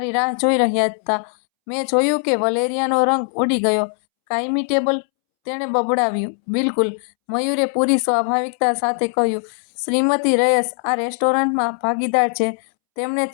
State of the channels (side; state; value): right; silent; 66 dB below the other